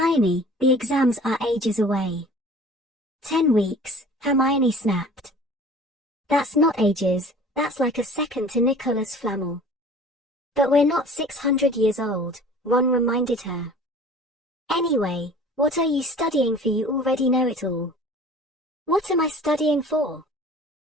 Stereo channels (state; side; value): normal; both; correlation 0.46